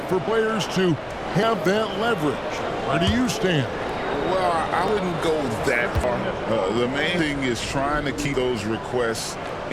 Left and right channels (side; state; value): both; identical; correlation 1.00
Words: for players to have that leverage. Where do you stand? Well, I wouldn't go that far. The main thing is trying to keep those requests